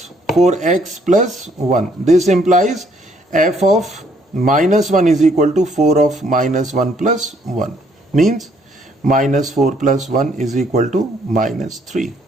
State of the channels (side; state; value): both; normal; correlation 0.67